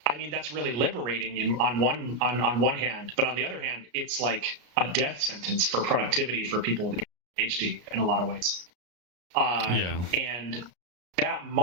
I mean, that's really liberating on one hand. But on the other hand, it's like a death sentence for productivity for people with ADHD in a lot of ways. And that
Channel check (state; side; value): late; left; 34 ms